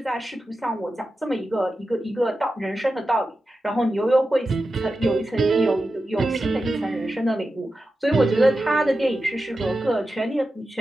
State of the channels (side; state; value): both; normal; correlation 0.92